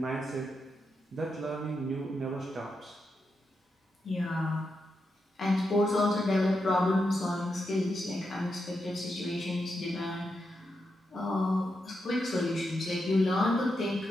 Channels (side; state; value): both; normal; correlation 0.85